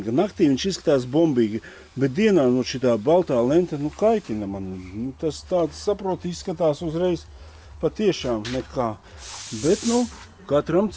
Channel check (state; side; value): identical; both; correlation 1.00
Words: Naktī viņš izskatās bombīgi, bet dienā šitā baltā lenta kaitina man. Tas tāds, saproti, izskatās uzreiz patiešām nekā. Bet, katram